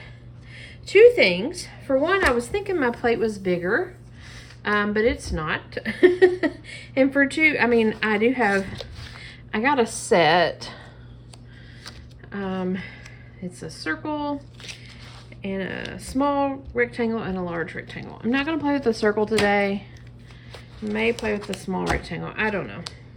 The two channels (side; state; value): both; identical; correlation 1.00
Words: Two things. For one, I was thinking my plate was bigger, but it's not. And for two, I got a set. It's a circle and a small rectangle and a large rectangle. I'm not gonna play with the circle today. May play with the small rectangle. I don't know.